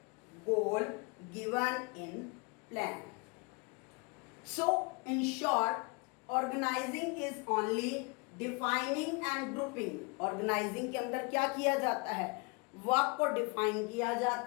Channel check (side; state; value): right; quieter; 30.4 dB